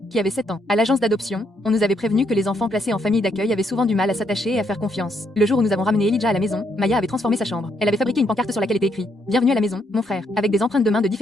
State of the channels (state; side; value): normal; both; correlation 0.75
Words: qui avait 7 ans. À l'agence d'adoption, on nous avait prévenu que les enfants placés en famille d'accueil avaient souvent du mal à s'attacher et à faire confiance. Le jour où nous avons ramené Elijah à la maison, Maya avait transformé sa chambre. Elle avait fabriqué une pancarte sur laquelle était écrit "Bienvenue à la maison, mon frère", avec des empreintes de mains de